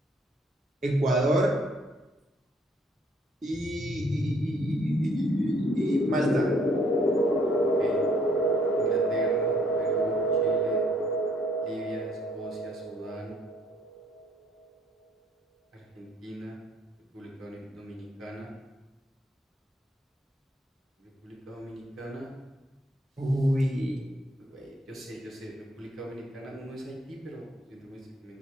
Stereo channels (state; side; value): normal; both; correlation 0.64